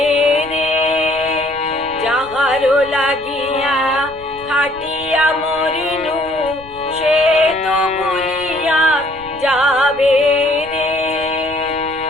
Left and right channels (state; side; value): noise; left; rumble, 21 dB below the sound